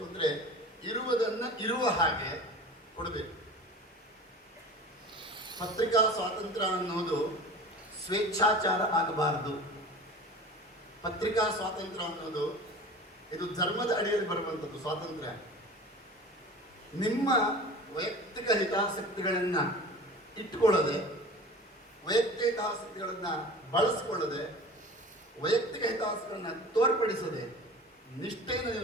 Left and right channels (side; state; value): both; normal; correlation 0.38